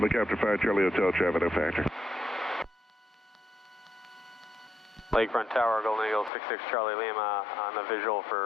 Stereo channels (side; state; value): right; drops out; at 6.3 s